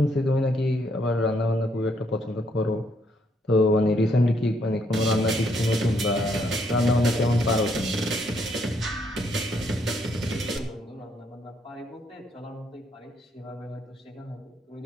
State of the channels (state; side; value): normal; both; correlation 0.72